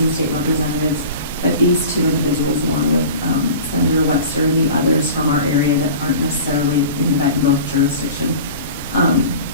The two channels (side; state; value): both; inverted; correlation -0.38